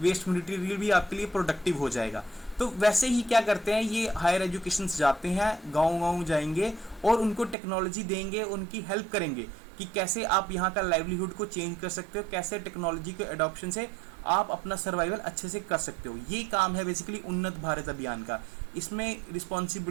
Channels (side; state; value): left; drops out; at 7.6 s